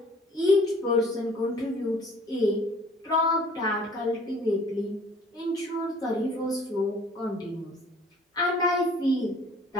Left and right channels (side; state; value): both; normal; correlation 0.53